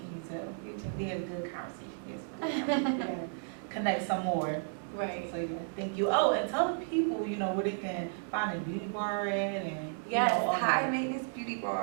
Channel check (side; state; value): left; silent; digital silence